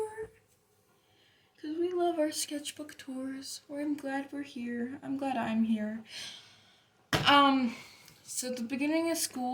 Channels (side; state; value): both; identical; correlation 1.00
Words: Because we love our sketchbook tours. I'm glad we're here. I'm glad I'm here. So the beginning of